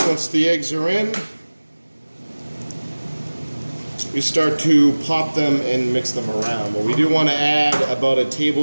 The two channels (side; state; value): both; inverted; correlation -1.00